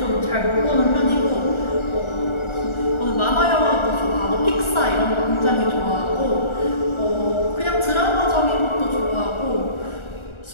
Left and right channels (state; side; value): late; right; 1.4 ms